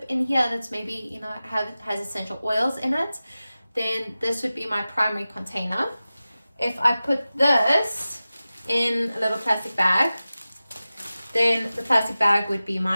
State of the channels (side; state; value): both; inverted; correlation -0.96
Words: in here that's maybe, you know, has essential oils in it, then this would be my primary container. If I put this in a little plastic bag, then the plastic bag would be